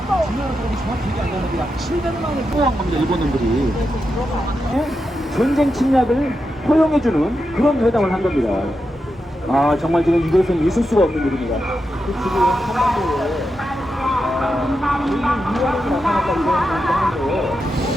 4. 일본인들이 전쟁 침략을 허용해주는 그런 회담을 한 겁니다. 아 정말 지금 이것은 있을 수가 없는 일입니다. 지금 한반도에 위안이 나타났다 이런 얘기를 하는데요.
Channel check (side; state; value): both; normal; correlation 0.87